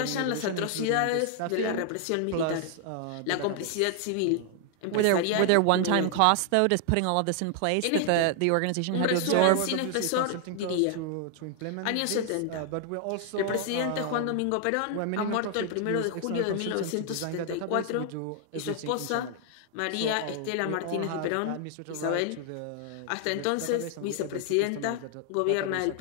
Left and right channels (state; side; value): different; both; correlation 0.00